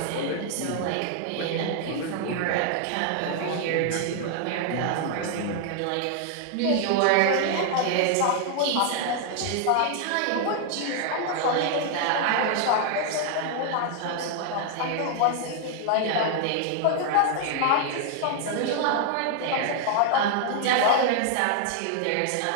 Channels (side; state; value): both; different; correlation 0.00